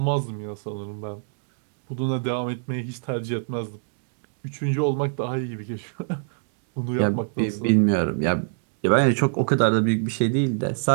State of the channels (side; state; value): left; silent; digital silence